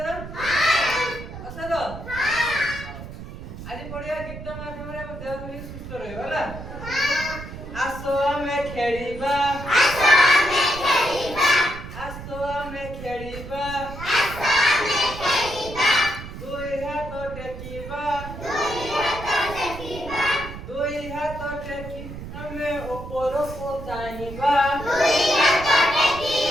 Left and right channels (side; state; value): right; noise; rumble, 11 dB below the sound